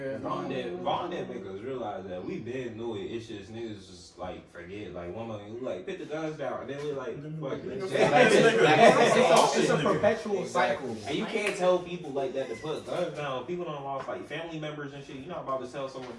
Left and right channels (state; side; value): identical; both; correlation 1.00